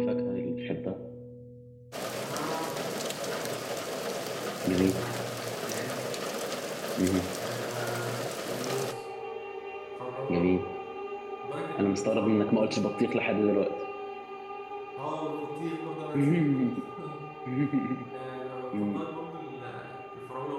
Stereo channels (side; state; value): both; identical; correlation 1.00